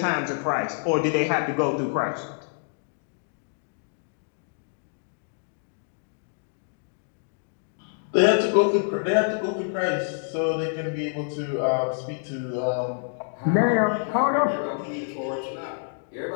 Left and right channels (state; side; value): silent; right; digital silence